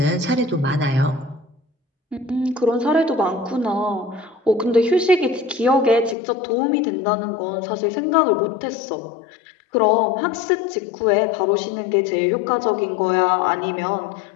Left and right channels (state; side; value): drops out; right; at 6.2 s